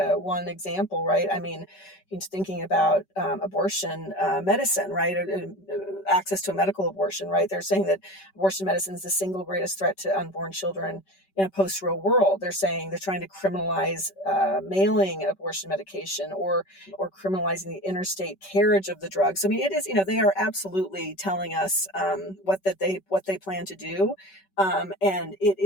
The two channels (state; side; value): late; right; 5.2 ms